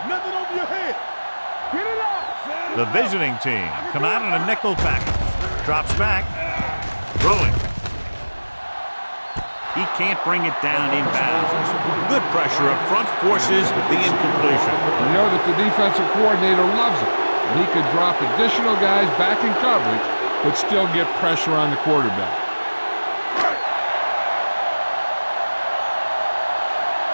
Nothing over your head. Get it up. The visiting team come out in a nickel package. Drops back. Throwing. He can't bring it down inbounds. Good pressure up front forces the incompletion. You know that the defensive coordinator loves it. And he could drop additional guys back in coverage, but still get pressure on the quarterback.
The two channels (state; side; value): inverted; both; correlation -1.00